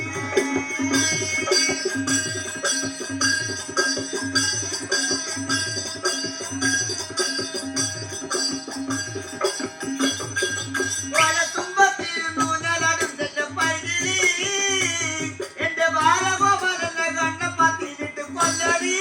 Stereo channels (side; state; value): both; identical; correlation 1.00